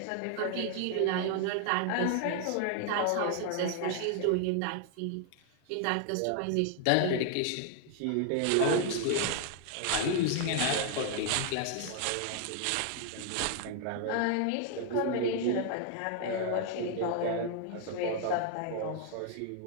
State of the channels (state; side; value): different; both; correlation 0.00